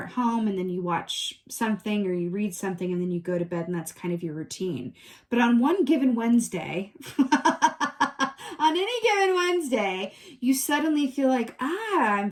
at home, and then you watch something or you read something, and then you go to bed, and that's kind of your routine. But on one given Wednesday, on any given Wednesday, you suddenly feel like, I'm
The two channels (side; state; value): both; identical; correlation 1.00